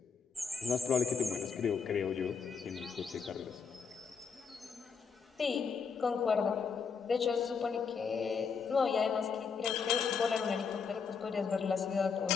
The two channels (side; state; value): right; quieter; 5.8 dB